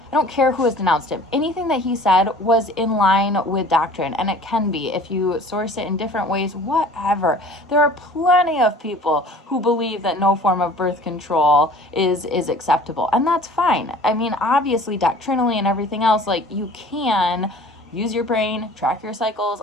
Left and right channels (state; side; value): normal; both; correlation 0.47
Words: I don't care who has denounced him. Anything that he said was in line with doctrine, and it can be if you source it in different ways, whatever. There are plenty of people who believe that no form of birth control is acceptable, and that's fine. I mean, obviously, doctrinally and everything else, you can use your brain, track your cycles,